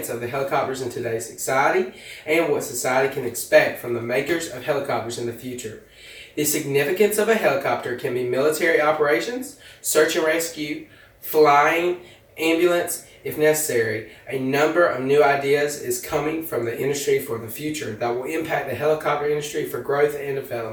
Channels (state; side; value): identical; both; correlation 1.00